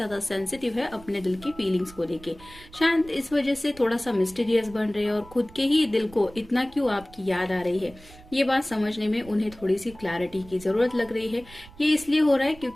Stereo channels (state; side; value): noise; right; rumble, 21 dB below the sound